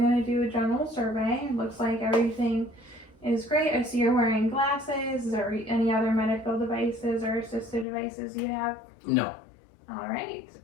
to do a general survey. It looks like everything is great. I see you're wearing glasses. Is there any other medical devices or assistive devices you have? No. All right.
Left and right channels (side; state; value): right; drops out; at 7.9 s